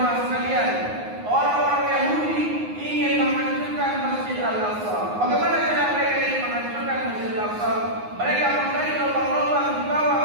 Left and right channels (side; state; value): left; late; 9.6 ms